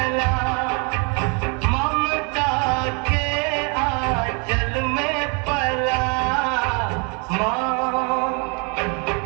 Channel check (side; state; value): left; quieter; 33.9 dB